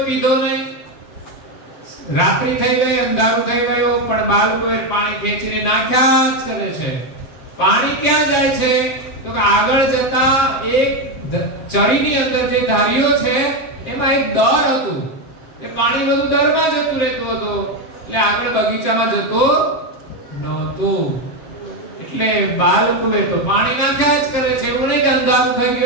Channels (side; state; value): right; late; 7.2 ms